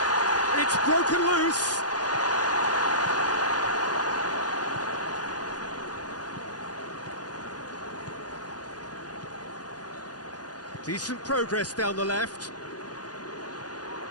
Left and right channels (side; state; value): right; late; 0.69 ms